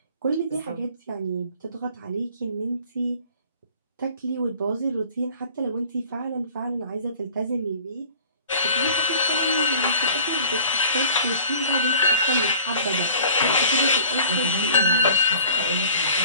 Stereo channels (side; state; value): both; inverted; correlation -0.46